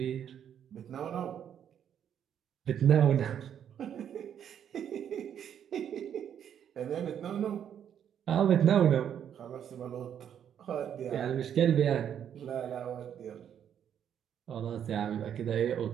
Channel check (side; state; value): left; quieter; 9.1 dB